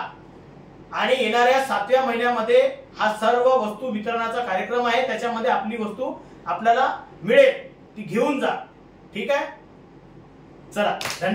आणि येणाऱ्या 7व्या महिन्यामध्ये हा सर्व वस्तू वितरणाचा कार्यक्रम आहे. त्याच्यामध्ये आपली वस्तू आपल्याला मिळेल, ती घेऊन जा. ठीक आहे, चला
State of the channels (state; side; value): identical; both; correlation 1.00